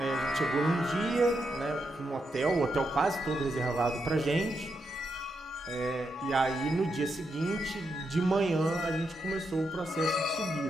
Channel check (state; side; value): normal; both; correlation 0.83